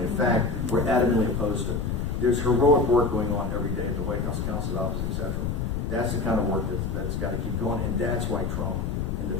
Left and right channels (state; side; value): noise; left; rumble, 2 dB below the sound